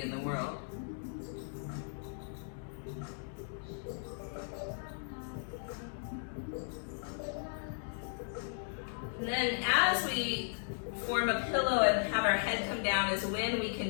in the world? And then as we form a pillow and have our head come down is when we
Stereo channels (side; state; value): right; silent; digital silence